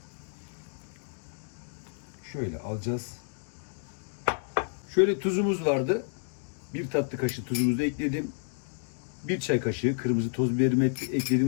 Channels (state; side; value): silent; right; digital silence